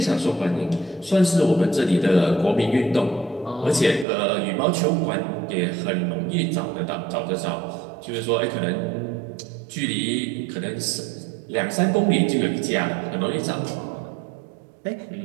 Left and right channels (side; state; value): left; drops out; at 4.0 s